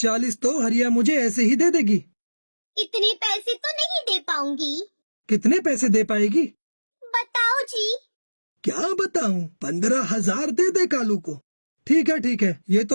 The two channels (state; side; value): inverted; both; correlation -1.00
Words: तो हरिया मुझे ऐसे ही दे देगी। इतने पैसे तो नहीं दे पाऊंगी। कितने पैसे दे पाएगी? बताओ जी। क्या बताऊं, 15,000 दे दे कालू को। ठीक है, ये